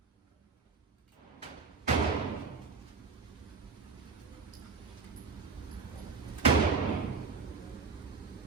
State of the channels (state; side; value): quieter; left; 5.1 dB